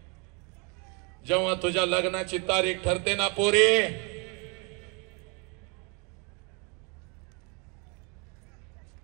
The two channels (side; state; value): left; quieter; 32.5 dB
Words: जेव्हा तुझ्या लग्नाची तारीख ठरते ना पोरी,